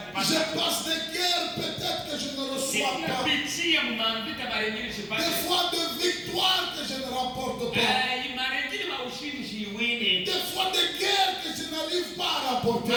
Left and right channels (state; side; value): noise; left; hum, 29 dB below the sound